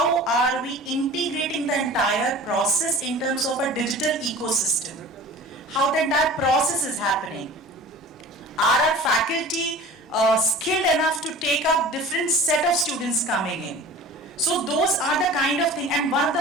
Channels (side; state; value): both; normal; correlation 0.41